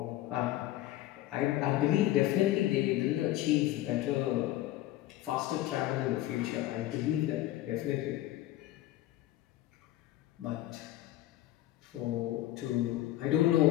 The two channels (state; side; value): quieter; right; 14.8 dB